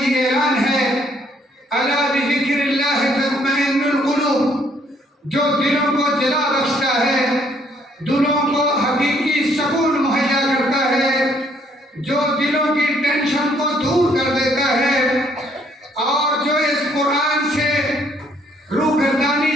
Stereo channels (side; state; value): both; normal; correlation 0.66